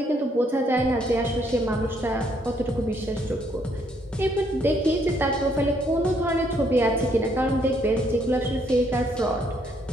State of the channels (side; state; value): both; normal; correlation 0.70